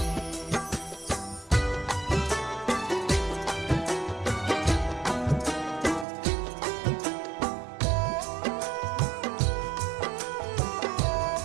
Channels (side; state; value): left; drops out; at 6.1 s